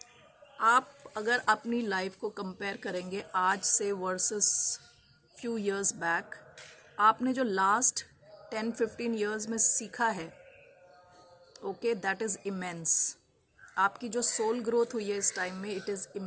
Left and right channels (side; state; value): both; identical; correlation 1.00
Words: आप अगर अपनी लाइफ को कंपेयर करेंगे आज से वर्सेस फ्यू इयर्स बैक, आपने जो लास्ट 10-15 इयर्स में सीखा है, ओके, दैट इज़ इमेंस। आपकी जो सोल ग्रोथ हुई है इस टाइम में, it is